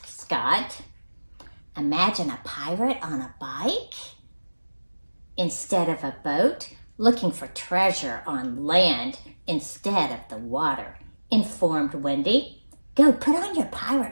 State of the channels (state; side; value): inverted; both; correlation -1.00